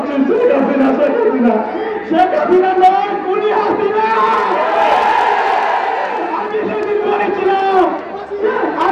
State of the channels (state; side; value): identical; both; correlation 1.00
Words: শেখ হাসিনা শেখ হাসিনা শেখ হাসিনা নয় খুনি হাসিনা। আমি সেদিন বলেছিলাম